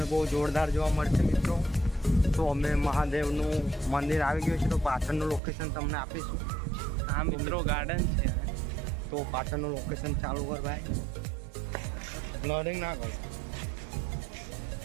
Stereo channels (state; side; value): drops out; left; at 5.4 s